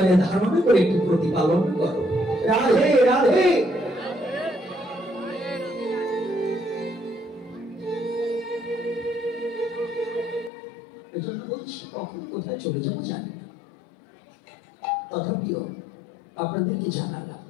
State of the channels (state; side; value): drops out; right; at 10.5 s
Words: ধারণ করে একটু প্রতিপালন করো। রাধে রাধে। এজন্য বলছি কখন কোথায় চলে যাবো জানি না, তথাপিও আপনাদেরকে জানালাম